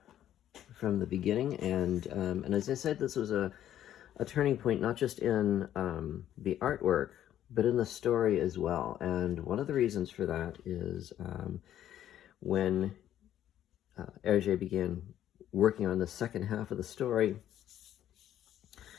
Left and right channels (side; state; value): right; quieter; 11.4 dB